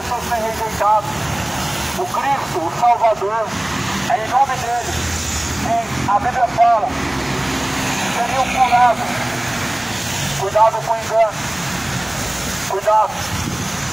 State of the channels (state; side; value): noise; right; hum, 28 dB below the sound